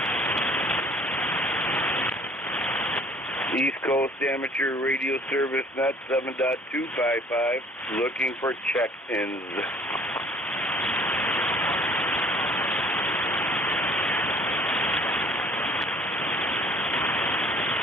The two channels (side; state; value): both; normal; correlation 0.54